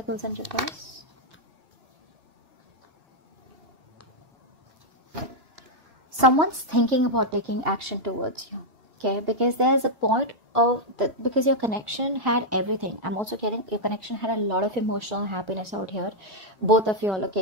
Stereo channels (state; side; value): late; left; 2.8 ms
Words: in reverse. Someone's thinking about taking action towards you, okay? Because there's a point of because your connection had everything. I'm also getting your connection had a lot of emotional happiness out here. Both of you all, okay?